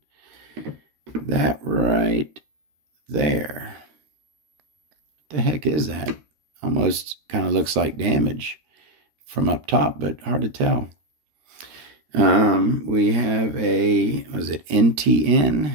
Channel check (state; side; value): late; left; 13 ms